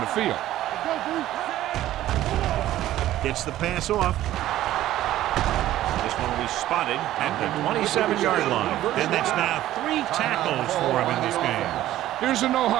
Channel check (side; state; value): left; quieter; 13.9 dB